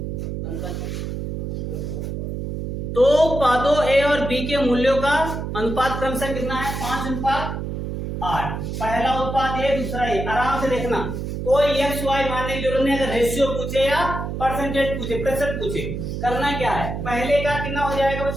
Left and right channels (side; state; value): right; noise; hum, 4 dB below the sound